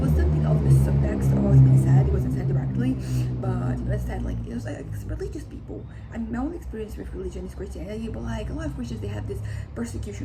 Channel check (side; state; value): both; identical; correlation 1.00